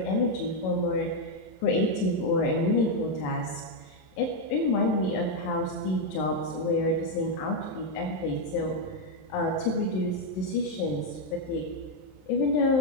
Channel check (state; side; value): late; right; 27 ms